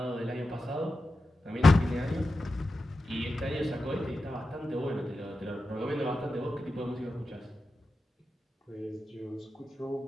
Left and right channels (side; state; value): both; normal; correlation 0.91